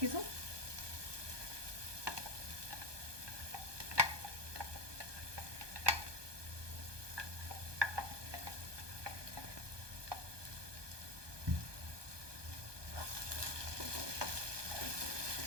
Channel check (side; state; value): left; late; 1.2 ms